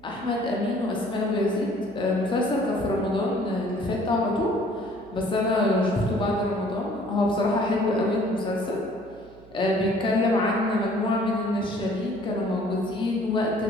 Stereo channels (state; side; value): noise; right; hum, 24 dB below the sound